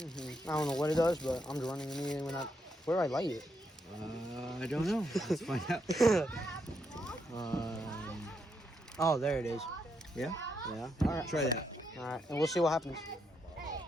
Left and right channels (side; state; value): both; normal; correlation 0.79